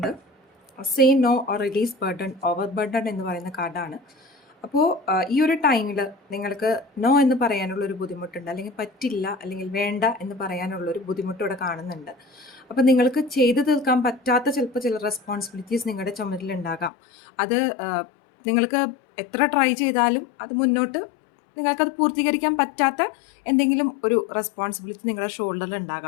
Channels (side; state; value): right; drops out; at 16.9 s